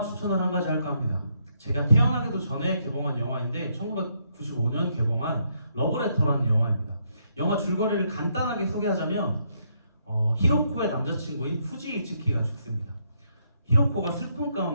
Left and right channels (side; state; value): both; inverted; correlation -0.75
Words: 추천을 한 가지 할까 합니다. 제가 태어나기도 전에 개봉한 영화인데 1995년 개봉한 러브레터라는 영화입니다. 영화 줄거리를 간단하게 소개하자면 히로코의 남자친구인 후지 이츠키가 죽습니다. 히로코가 슬픔